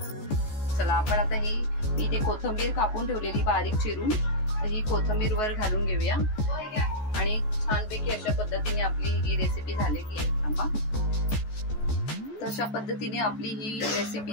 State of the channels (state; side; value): late; right; 14 ms